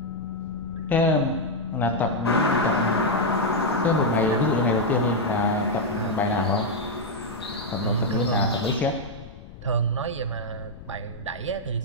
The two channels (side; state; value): left; noise; rumble, 16 dB below the sound